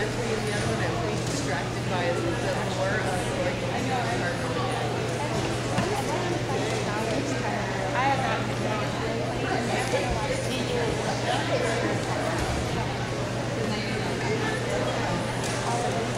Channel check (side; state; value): both; identical; correlation 1.00